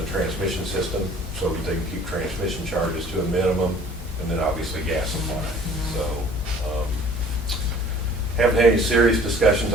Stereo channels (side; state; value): both; normal; correlation 0.51